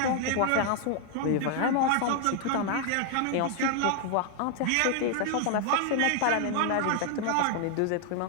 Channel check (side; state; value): both; different; correlation 0.00